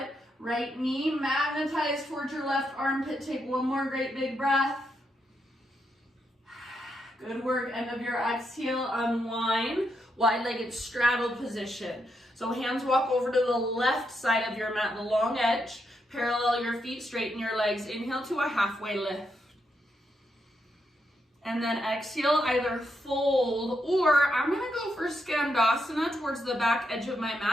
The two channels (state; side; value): normal; both; correlation 0.81